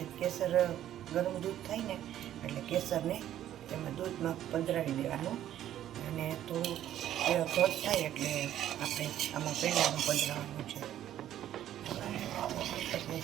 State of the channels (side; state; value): left; quieter; 11.8 dB